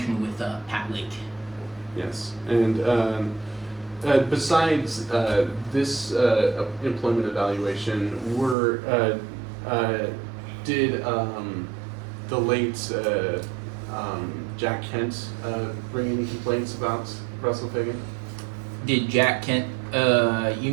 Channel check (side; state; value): left; drops out; at 8.6 s